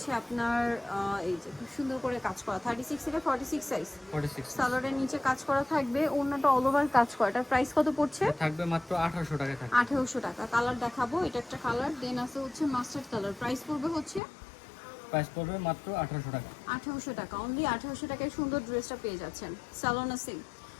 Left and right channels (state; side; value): drops out; right; at 14.2 s